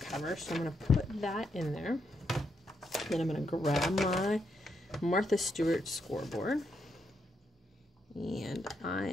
so I'm going to put that in there. Then I'm going to grab my Martha Stewart scoreboard, and I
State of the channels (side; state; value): both; normal; correlation 0.79